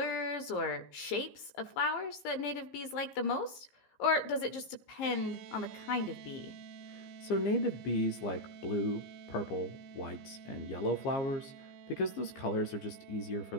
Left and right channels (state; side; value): late; right; 15 ms